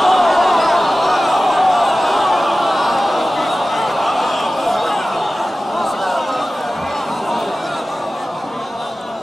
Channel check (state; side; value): normal; both; correlation 0.96